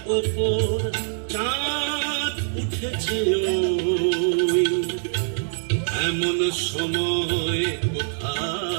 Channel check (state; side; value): silent; left; digital silence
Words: ওপর, চাঁদ উঠেছে ওই এমন সময়